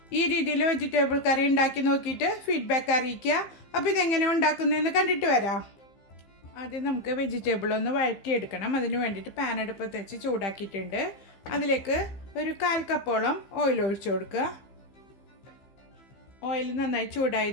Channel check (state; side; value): late; right; 15 ms